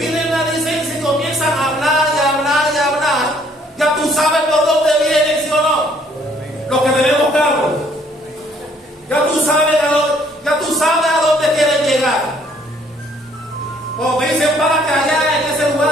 la licencia y comienzan a hablar y hablar y hablar. Ya tú sabes por dónde vienen, ¿sí o no? Los que tenemos carro. Ya tú sabes a dónde quieren llegar. Cuando te dicen párate allá en ese lugar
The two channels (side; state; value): both; normal; correlation 0.63